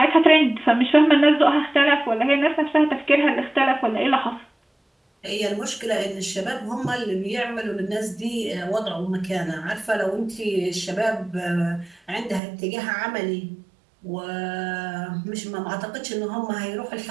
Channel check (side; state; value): left; drops out; at 12.4 s